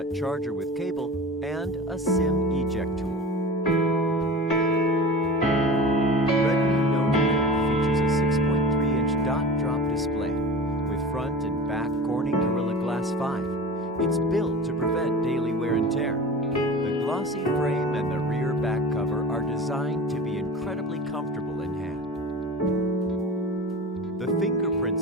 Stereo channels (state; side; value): normal; both; correlation 0.34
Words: charger with cable, and a SIM eject tool. Redmi Note 8 features a 6.3-inch dot-drop display with front and back Corning Gorilla Glass 5. It's built to prevent daily wear and tear. The glossy frame and the rear back cover are designed to be incredibly comfortable in hand. The fingerprint